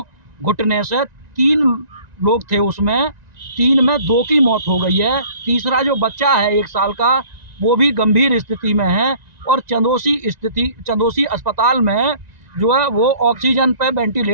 घुटने से 3 लोग थे उसमें, 3 में 2 की मौत हो गई है। तीसरा जो बच्चा है 1 साल का, वो भी गंभीर स्थिति में है और चंदोसी अस्पताल में जो है वो ऑक्सीजन पे,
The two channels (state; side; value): late; left; 1.9 ms